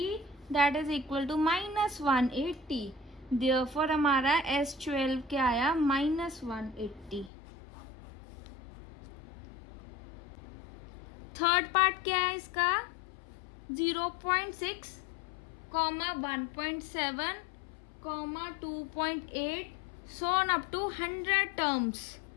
that is equal to -180। Therefore हमारा S12 क्या आया -180। थर्ड पार्ट क्या है इसका 0.6, 1.7, 2.8 so on up to 100 terms.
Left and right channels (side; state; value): right; drops out; at 7.3 s